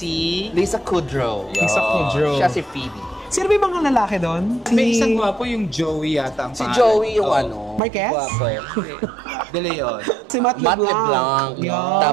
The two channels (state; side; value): drops out; left; at 7.8 s